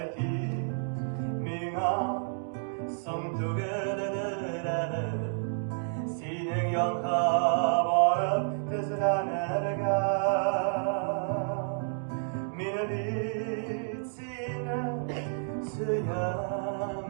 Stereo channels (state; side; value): silent; left; digital silence